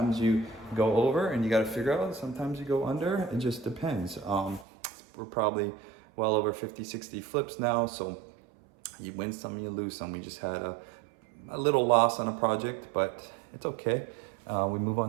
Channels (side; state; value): left; drops out; at 4.7 s